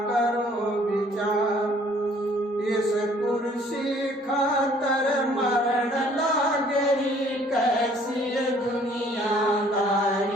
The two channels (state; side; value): normal; both; correlation 0.58